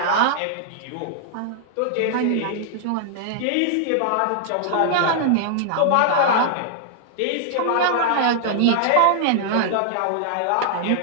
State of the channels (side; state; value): both; different; correlation -0.01